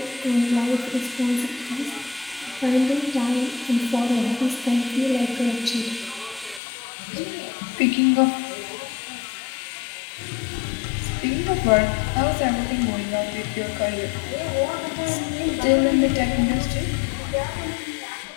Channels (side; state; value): right; drops out; at 6.6 s